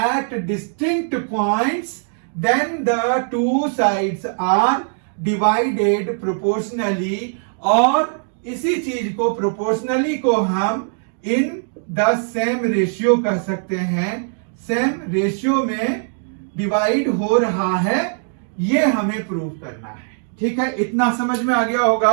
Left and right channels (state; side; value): silent; left; 66 dB below the other